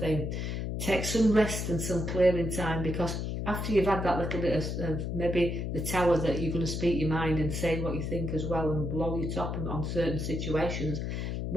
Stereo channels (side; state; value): left; noise; hum, 3 dB below the sound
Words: Take some rest and some clearing time, because after you've had that little bit of maybe the tower that you're going to speak your mind and say what you think as well and blow your top on certain situations,